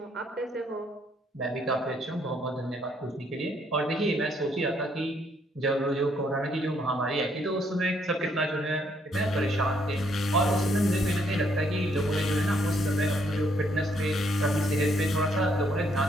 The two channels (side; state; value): both; normal; correlation 0.70